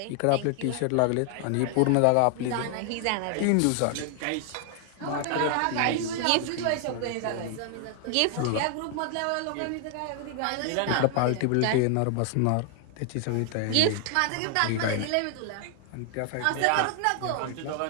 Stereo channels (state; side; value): different; both; correlation 0.00